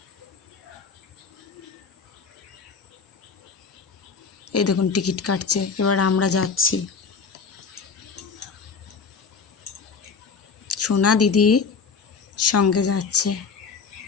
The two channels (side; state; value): right; quieter; 5.2 dB